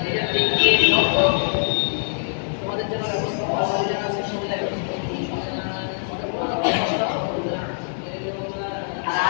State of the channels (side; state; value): right; silent; digital silence